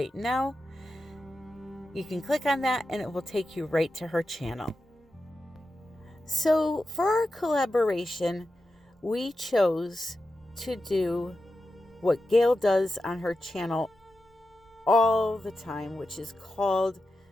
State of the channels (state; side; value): normal; both; correlation 0.90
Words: now. You can click on that and it will take you right to her channel. So for our collaboration, we chose to do what Gail does on her channel all the time, which is called